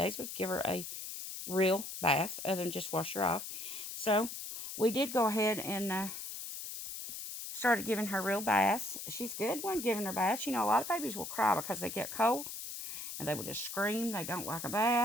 would give her a real bath, other than just wash her off. So we did go ahead and started giving her real baths. She's good when giving her baths. A lot of babies will cry because they get cold, and they will just scream. They don't like a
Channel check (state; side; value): noise; left; hiss, 7 dB below the sound